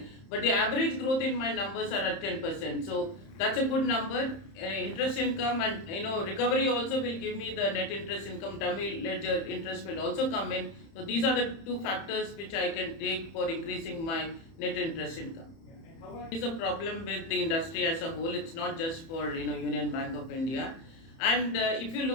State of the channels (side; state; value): right; late; 30 ms